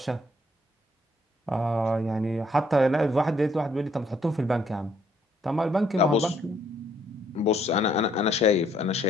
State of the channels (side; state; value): both; normal; correlation 0.68